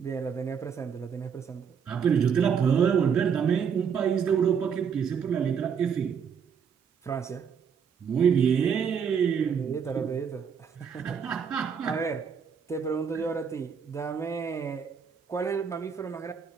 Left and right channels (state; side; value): quieter; left; 7.0 dB